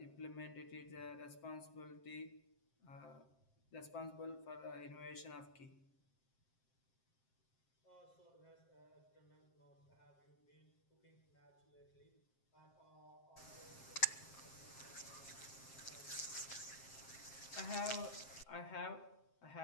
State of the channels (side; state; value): right; late; 7.6 ms